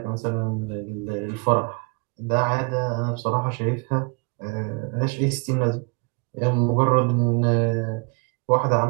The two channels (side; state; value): left; quieter; 33.3 dB